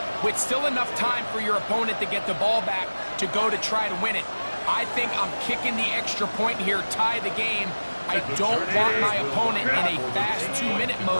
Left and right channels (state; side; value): inverted; both; correlation -1.00